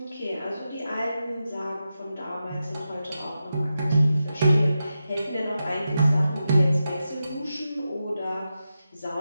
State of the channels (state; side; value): inverted; both; correlation -0.90